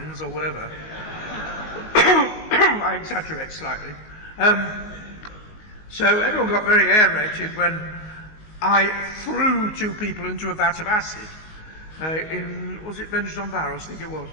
or whatever. I exaggerate slightly. So everyone got very aerated when I threw 2 people into a vat of acid was it Vengeance on Barrows? I think it was.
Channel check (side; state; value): right; late; 19 ms